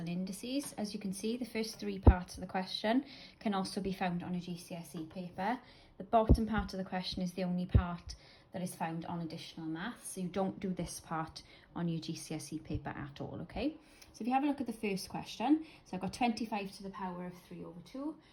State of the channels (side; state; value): both; identical; correlation 1.00